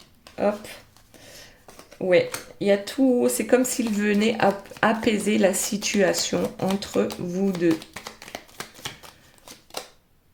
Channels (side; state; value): both; identical; correlation 1.00